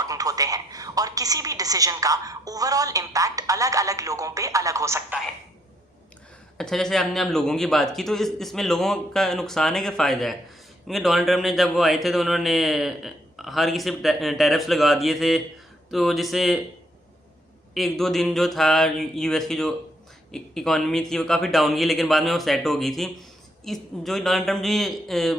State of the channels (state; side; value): normal; both; correlation 0.72